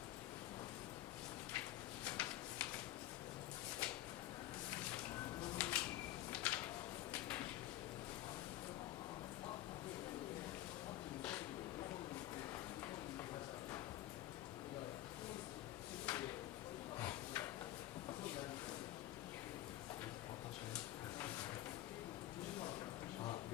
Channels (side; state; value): right; quieter; 14.5 dB